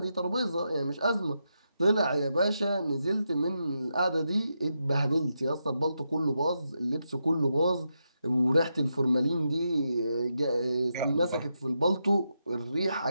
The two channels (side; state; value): both; inverted; correlation -0.85